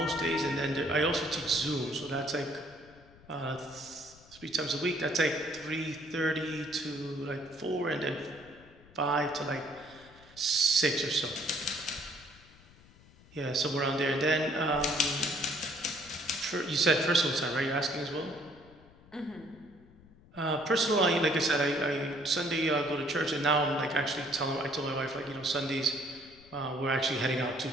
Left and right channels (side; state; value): left; noise; rumble, 24 dB below the sound